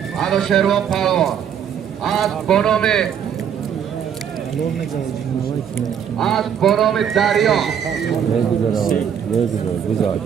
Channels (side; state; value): left; quieter; 8.4 dB